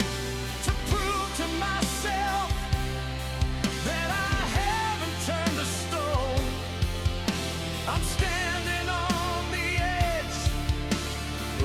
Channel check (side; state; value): both; identical; correlation 1.00